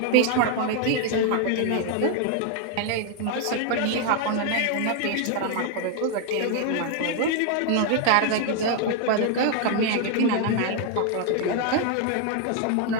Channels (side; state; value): both; different; correlation 0.00